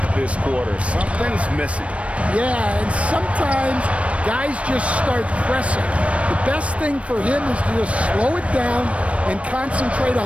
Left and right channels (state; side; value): late; left; 0.063 ms